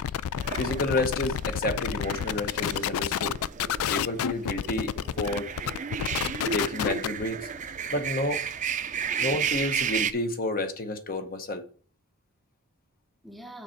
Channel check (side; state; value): both; normal; correlation 0.21